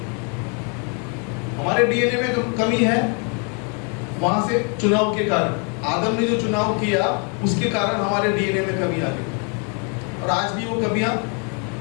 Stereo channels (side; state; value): right; quieter; 37.0 dB